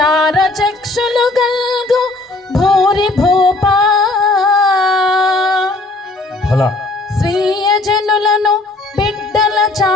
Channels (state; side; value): quieter; right; 3.1 dB